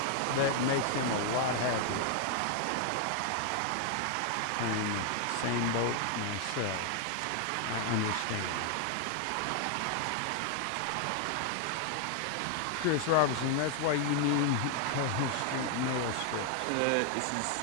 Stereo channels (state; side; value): different; both; correlation 0.00